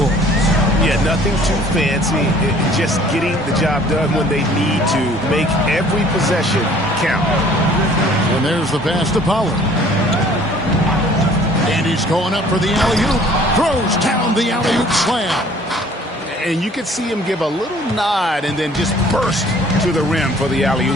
Yeah, nothing too fancy. Just getting the job done when they need to. Make every possession count. And there's the pass to Pollard. And he's going up for the alley-oop. Throws down the alley-oop slam. And you can see him give a little nod and then just burst to the rim for the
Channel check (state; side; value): normal; both; correlation 0.54